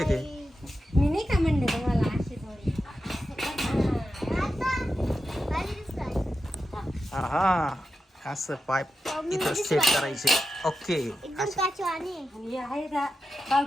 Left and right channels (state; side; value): normal; both; correlation 0.89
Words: ते मी नाही का म्हणले तुम्हाला अशी थोडी हा असं पाईप इथं सेट करायचे ओके आणि हे आहे का